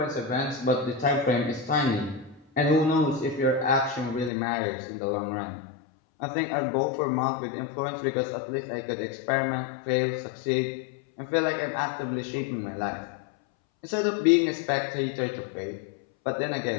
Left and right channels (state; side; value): drops out; right; at 4.3 s